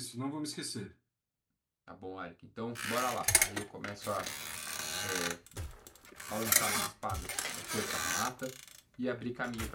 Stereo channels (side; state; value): both; identical; correlation 1.00